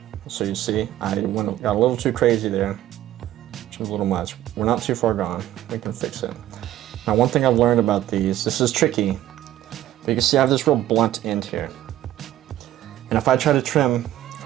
so you see, got a little too crazy there, which is a little much. We're not too far gone, we can fix it. Now one thing I've learned about these, this is tricky, but you can see I have this real blunt end here. And if I try to trim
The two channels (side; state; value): left; quieter; 13.5 dB